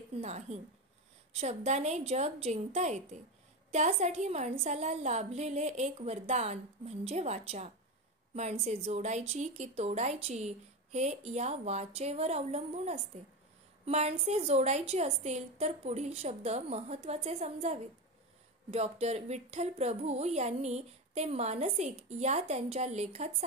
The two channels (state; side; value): normal; both; correlation 0.17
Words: नाही. शब्दाने जग जिंकता येते. त्यासाठी माणसाला लाभलेले एक वरदान म्हणजे वाचा. माणसे जोडायची की तोडायची हे या वाचेवर अवलंबून असते. माणसे जोडायची असतील तर पुढील शब्द महत्त्वाचे समजावेत. डॉक्टर विठ्ठल प्रभू यांनी ते मानसिक या त्यांच्या लेखात